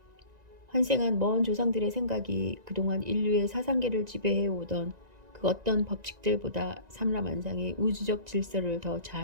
환생한 먼 조상들의 생각이 그동안 인류의 사상계를 지배해오던 그 어떤 법칙들보다 삼라만상의 우주적 질서를 더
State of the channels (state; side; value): late; left; 1.9 ms